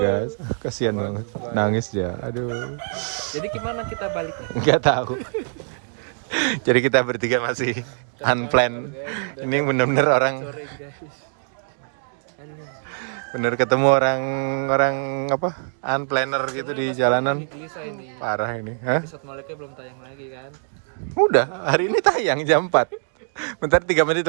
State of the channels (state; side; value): silent; left; digital silence